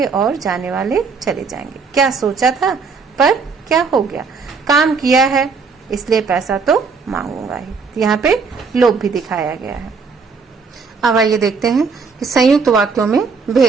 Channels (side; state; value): left; quieter; 5.1 dB